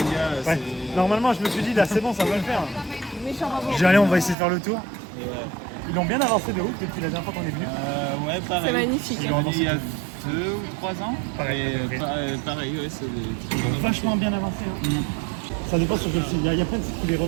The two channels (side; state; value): left; drops out; at 4.4 s